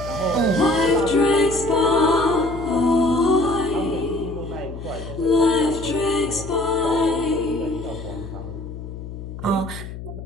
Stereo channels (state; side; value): noise; left; hum, 10 dB below the sound